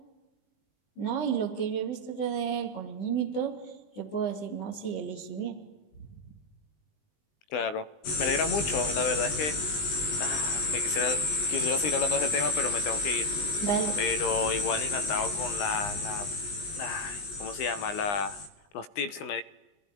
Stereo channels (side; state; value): right; late; 20 ms